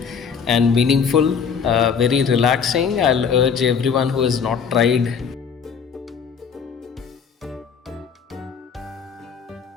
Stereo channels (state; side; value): quieter; right; 6.5 dB